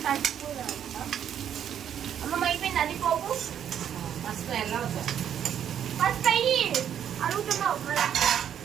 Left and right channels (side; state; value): left; quieter; 9.3 dB